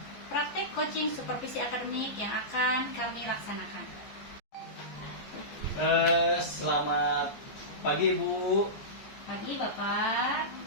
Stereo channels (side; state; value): right; late; 14 ms